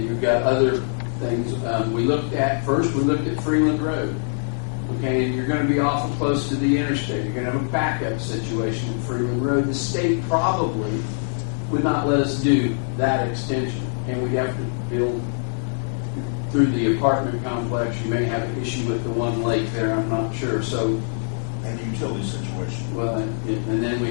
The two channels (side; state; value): right; silent; digital silence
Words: you've got other things. We looked at Freeland Road. Okay, and you're going to be awful close to the interstate. You're going to have a backup situation at Freeland Road. The state probably would not let us do that extension, and we'd have to build through the apartment complex. You may have an issue with the one lake there, I'm not sure. So, And the utility situation. well, and then we